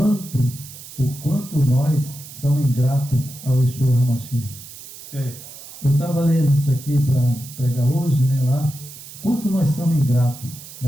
o quanto nós somos ingratos ao Yeshua HaMashiach. Eu estava lendo isso aqui para pregar hoje, né, lá. Quanto nós somos ingratos,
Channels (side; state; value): right; noise; hiss, 15 dB below the sound